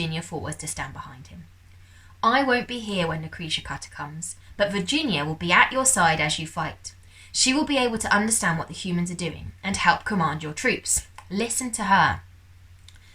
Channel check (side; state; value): both; identical; correlation 1.00